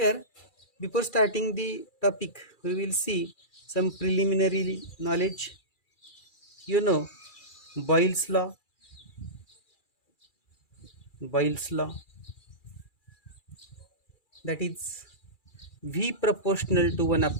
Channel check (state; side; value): late; right; 2.3 ms